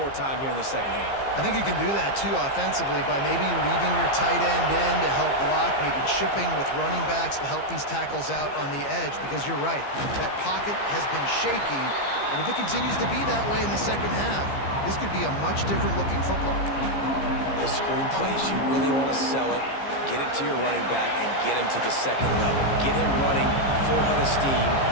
time here in the second half. I think you can do that, too, offensively, by maybe leaving your tight end in to help block, maybe chipping with running backs to help these tackles out on the edge, because you're right, that pocket has been shaky, and if it continues to be that way in the second half, this could be a much different-looking football. Those screen plays, you really want to sell it, get it to your running back, and get him to the second level. Get him running full head of steam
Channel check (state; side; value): late; right; 15 ms